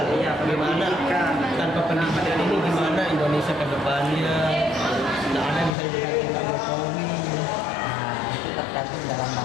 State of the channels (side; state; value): right; drops out; at 5.7 s